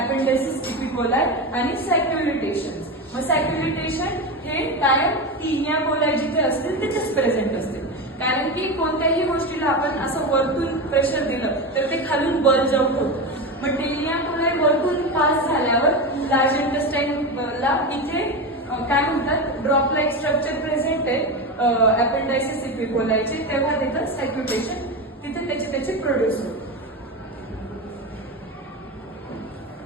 अपेंडायसिस इपिकोलाई आणि सॅक्युलिटेशन्स. मग सॅक्युलिटेशन हे कायम टेनिया कोलाई जिथे असतील तिथेच प्रेझेंट असते. कारण की कोणत्याही गोष्टीला आपण असं वरतून प्रेशर दिलं तर ते खालून बल्ज आउट होतं. मग टेनिया कोलाई वरतून पास झाल्यावर लार्ज इंटेस्टाइनला इथे काय म्हणतात ड्रॉप लाईक स्ट्रक्चर प्रेझेंट आहे अपेंडायसिस इपिकोलायचे, तेव्हा तिथं सॅक्युलेशन तिथे त्याचे प्रोड्यूस होते.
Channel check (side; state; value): both; normal; correlation 0.19